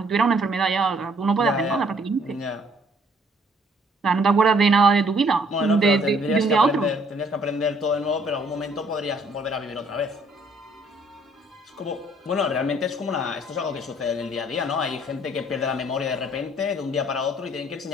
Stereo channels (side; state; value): both; normal; correlation 0.63